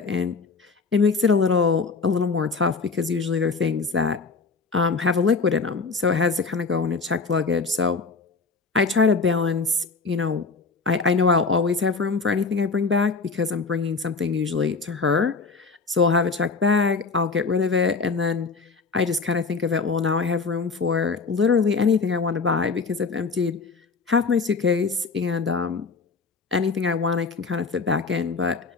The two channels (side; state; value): right; quieter; 4.6 dB